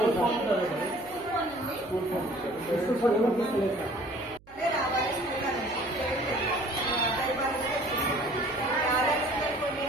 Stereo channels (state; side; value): noise; right; hum, 26 dB below the sound